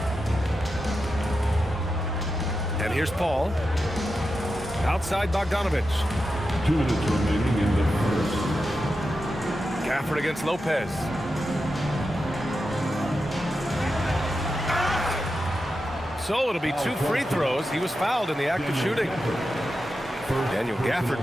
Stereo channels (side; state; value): both; normal; correlation 0.89